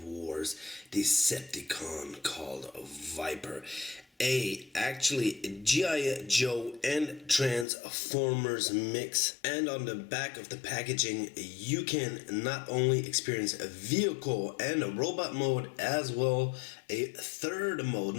Wars Decepticon called VIPER. Actually G.I.Joe and Transformers mix, and on the back of the packaging you can not only experience a vehicle and a robot mode, as well a third mode,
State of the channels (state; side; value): drops out; right; at 7.7 s